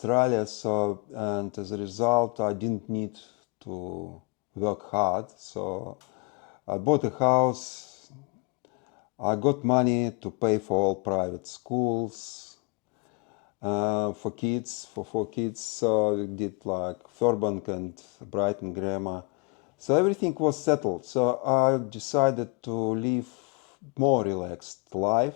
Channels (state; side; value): quieter; right; 31.7 dB